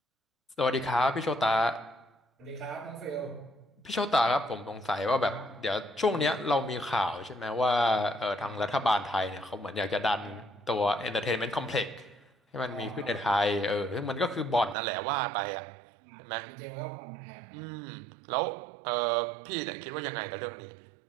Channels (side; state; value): left; drops out; at 14.8 s